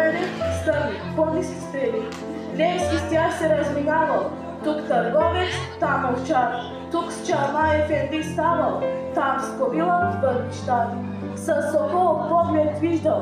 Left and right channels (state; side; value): identical; both; correlation 1.00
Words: стърни, по-ниски стрели. Левски с тях се разминавал, тук търговец, там овчар, тук с чалма ефенди ставал, там с кобила в бъднищар. С сокол поглед